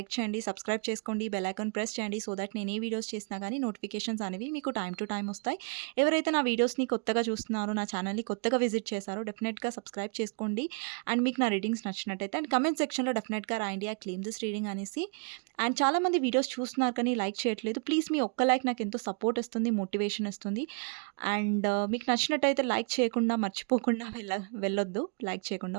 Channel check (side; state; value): left; quieter; 38.1 dB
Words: చేయండి, సబ్స్క్రైబ్ చేసుకోండి, బెల్ ఐకాన్ ప్రెస్ చేయండి. సో దట్ నేను ఏ వీడియోస్ చేసినా కానీ నోటిఫికేషన్స్ అనేవి మీకు టైం టు టైం వస్తాయి. ఎవరైతే నా వీడియోస్ని కొత్తగా చూస్తున్నారో, నా ఛానల్ని కొత్తగా విజిట్ చేశారో డెఫినెట్గా సబ్స్క్రైబ్ చేసుకోండి. అండ్ మీకు నా రీడింగ్స్ నచ్చినట్టయితే అండ్ కమెంట్ సెక్షన్లో డెఫినెట్గా రాయండి ఐ క్లెయిమ్ దిస్ రీడింగ్ అనేసి. అండ్ చాలామంది వీడియోస్ చూస్తున్నారు కానీ లైక్ చేయట్లేదు. ప్లీజ్ మీ ఒక్క లైక్ నాకు ఎంతో సపోర్ట్ ఇస్తుంది, మోటివేషన్ ఇస్తుంది. అండ్ మీకు నచ్చినట్టయితే లైక్ చేయకుండా మర్చిపోకుండా వెళ్ళొద్దు లైక్ చేయకుండా,